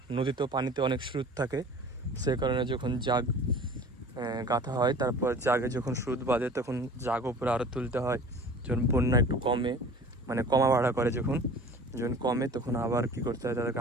নদীতেও পানিতে অনেক স্রোত থাকে। সে কারণে যখন জাগ গাঁথা হয়, তারপর জাগে যখন স্রোত বাঁধে, তখন জাগ উপরে আরও তুলতে হয়। যখন বন্যা একটু কমে, মানে কমা বাড়া করে, যখন কমে, তখন আবার কি করতে হয়, তাদেরকে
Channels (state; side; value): normal; both; correlation 0.43